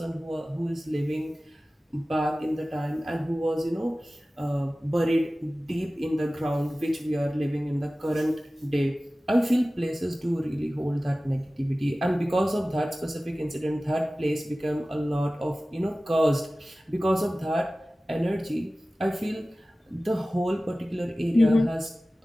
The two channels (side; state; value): both; normal; correlation 0.97